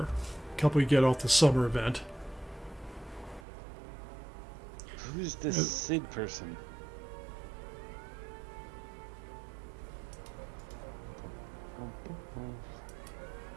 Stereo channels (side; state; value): left; drops out; at 3.4 s